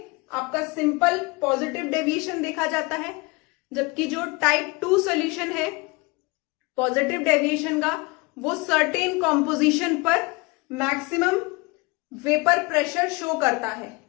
आपका सिंपल पॉजिटिव डेविएशन देखा जाता है, जबकि जो टाइप 2 सॉल्यूशन है पॉजिटिव डेविएशन का, वो सर्टेन कॉम्पोजिशन पर मैक्सिमम वेपर प्रेशर शो करता है।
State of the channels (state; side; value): quieter; right; 26.2 dB